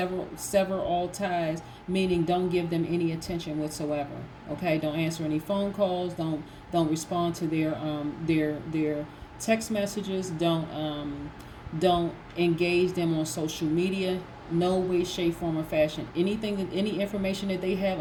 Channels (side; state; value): both; identical; correlation 1.00